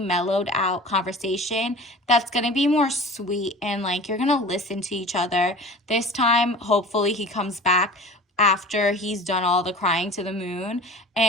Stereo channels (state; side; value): normal; both; correlation 0.39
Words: out conversation that's going to be more sweet, and like you're going to listen to each other. This time, hopefully he comes back after he's done all the crying to the moon,